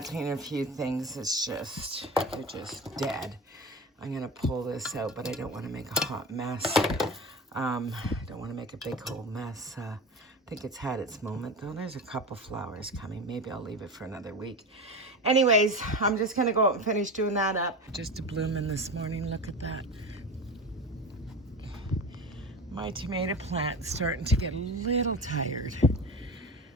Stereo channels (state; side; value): normal; both; correlation 0.27